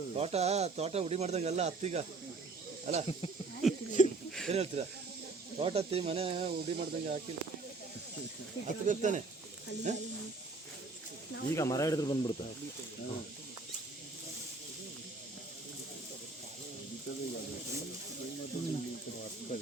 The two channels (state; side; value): quieter; left; 3.6 dB